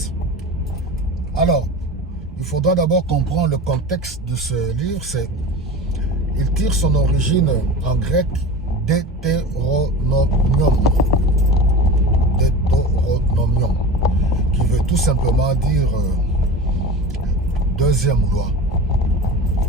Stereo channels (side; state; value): both; normal; correlation 0.32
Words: Alors, il faudra d'abord comprendre le contexte de ce livre. Il tire son origine en grec Deutéronomium. Deutéronomium, qui veut tout simplement dire deuxième loi.